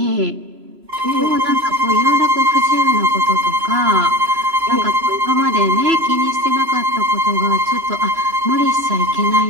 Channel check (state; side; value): late; left; 3.0 ms